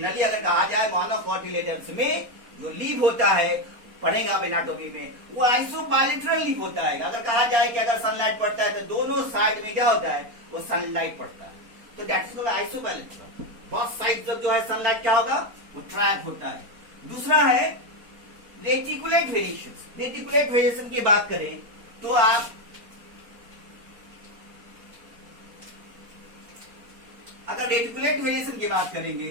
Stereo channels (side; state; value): left; late; 4.2 ms